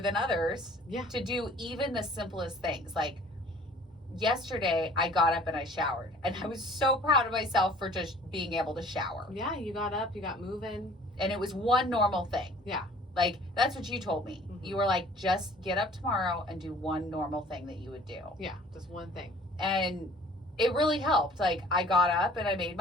others to do even the simplest things. Like yesterday, I got up and I showered. And I was so proud of myself for just being able to shower. Yeah, you got up, you got moving. And it was one normal thing. Yeah. Like, that's what you told me. You were like, just get up tomorrow and do one normal thing that you would do. Yeah, just one thing. And it really helped. Like, I got up and I made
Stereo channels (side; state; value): both; normal; correlation 0.50